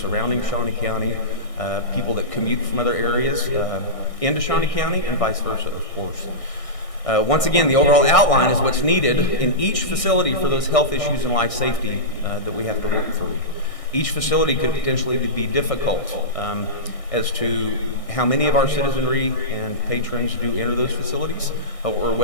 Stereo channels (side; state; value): right; late; 1.6 ms